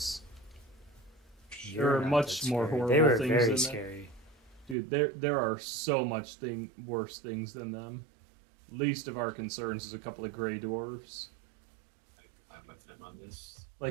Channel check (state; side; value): drops out; left; at 4.8 s